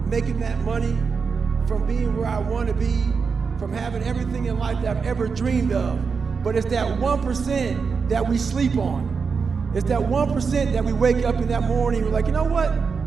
making that money, from being where I want to be, from having everything in life that I've ever dreamed of. But it's that 1% that we sleep on. It's that 1% that we wake up in that morning and we're like, you know what?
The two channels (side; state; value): left; quieter; 5.4 dB